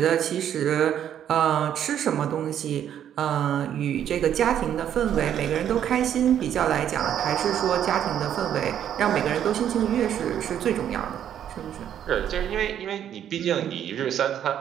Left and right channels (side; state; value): left; quieter; 9.9 dB